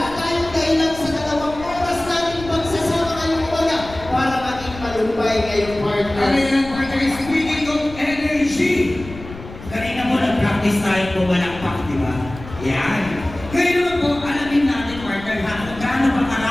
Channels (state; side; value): noise; left; rumble, 15 dB below the sound